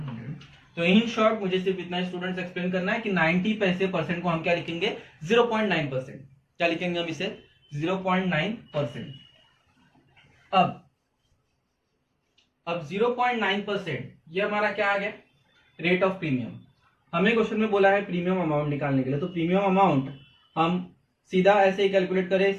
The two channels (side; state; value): both; identical; correlation 1.00